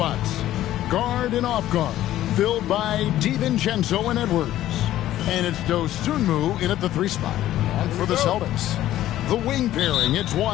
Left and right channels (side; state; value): right; quieter; 13.6 dB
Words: Guard and off guard, filled by DiVincenzo and Edwards. And it's Dosunmu in at the 3 spot. And for the Celtics, the wing pairing, it's